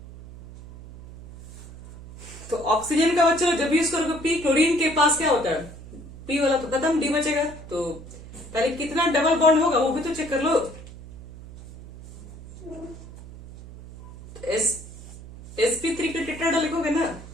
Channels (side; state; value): right; noise; hum, 16 dB below the sound